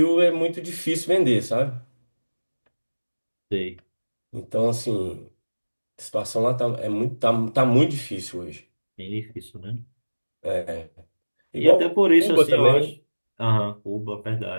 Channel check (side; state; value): both; inverted; correlation -1.00